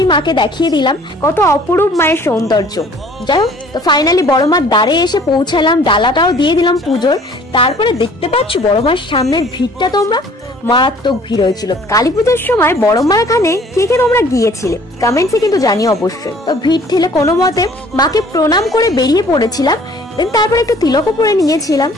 মাকে দেখিয়ে দিলাম, কত অপরূপ মায়ের সৌন্দর্য। যাই হোক, তো ফাইনালি বড় মার দ্বারে এসে পৌঁছালাম, ডালাটাও দিয়ে দিলাম পুজোর। তারপরে দেখতে পাচ্ছ বড় মার সামনের ভিড়টা, তোমরা মারাত্মক ভিড় হয়েছিল। কালী পুজোর সময় বড় মার এখানে কে কে তোমরা গিয়েছিলে কমেন্টসে কিন্তু জানিও অবশ্যই। তো ভিড় ঠেলে কোনো মতে মাকে প্রণাম করে বেরিয়ে পড়েছিলাম। দেন তারপর একটু তিলকও পরে নিয়েছিলাম।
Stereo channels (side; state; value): both; normal; correlation 0.54